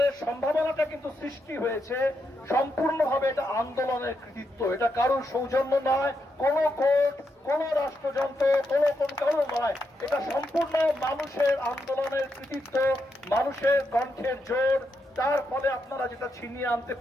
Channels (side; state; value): both; normal; correlation 0.82